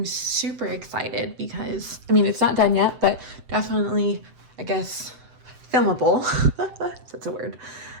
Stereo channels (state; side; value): late; left; 7.8 ms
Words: super excited because, I mean, it's not done yet, but definitely, I guess, filmable. That's a word.